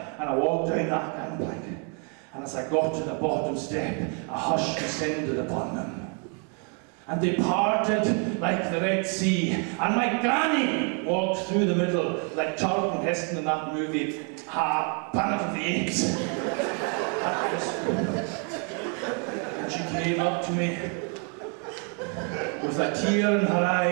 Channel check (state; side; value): quieter; left; 38.7 dB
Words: And I walked down that gangplank. And as I got to the bottom step, a hush descended upon them. And they parted like the Red Sea. And my granny walked through the middle like Charlton Heston in that movie, Planet of the Apes. And she came up to me with a tear in her